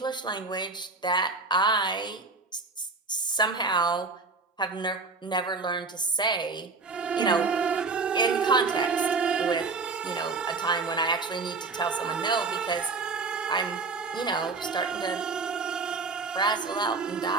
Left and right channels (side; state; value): left; quieter; 4.1 dB